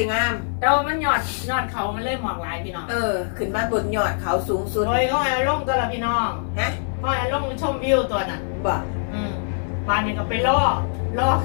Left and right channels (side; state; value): right; silent; 57 dB below the other